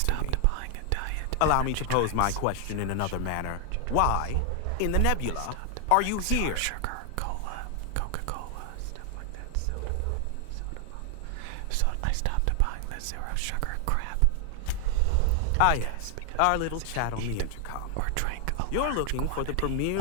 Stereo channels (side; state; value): both; different; correlation 0.00